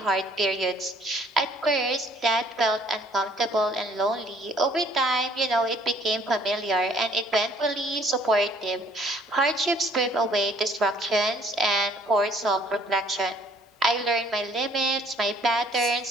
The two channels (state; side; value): normal; both; correlation 0.60